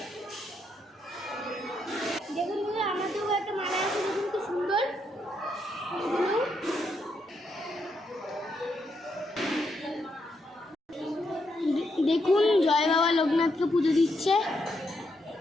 দেখুন বন্ধুরা, আমাদেরও একটা মালা আছে। দেখুন কি সুন্দর। দেখুন জয় বাবা লোকনাথকে পুজো দিচ্ছে।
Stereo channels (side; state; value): both; normal; correlation 0.79